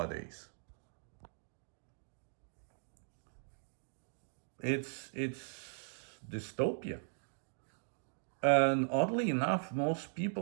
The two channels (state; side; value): silent; left; digital silence